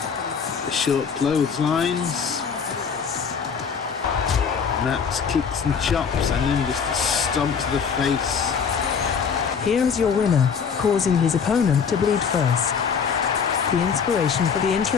The short clotheslines. Matt's kicks and chops, and then just a stomp to the face. Here is your winner, causing his opponent to bleed first. The inspiration for the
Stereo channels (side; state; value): right; quieter; 6.4 dB